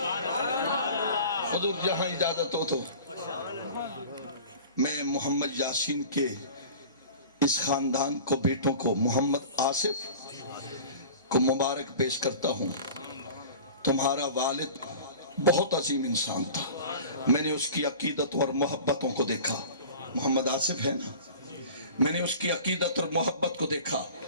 حضور جہاں اجازت ہو تو میں محمد یاسین کے اس خاندان کو، بیٹوں کو، محمد آصف کو مبارک پیش کرتا ہوں۔ تمہارا والد بہت عظیم انسان تھا، میں نے اس کی عقیدت اور محبتوں کو دیکھا، محمد آصف ہے نا، میں نے اس کی عقیدت اور محبت کو دیکھا۔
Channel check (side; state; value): both; inverted; correlation -0.41